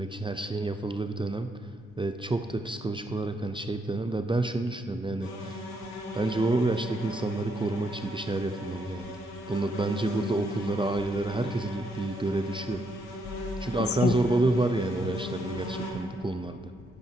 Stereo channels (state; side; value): normal; both; correlation 0.75